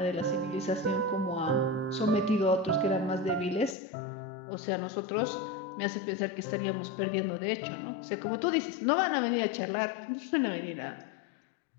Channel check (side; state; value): right; drops out; at 3.8 s